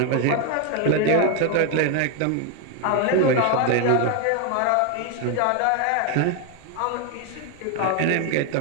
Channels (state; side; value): different; both; correlation 0.01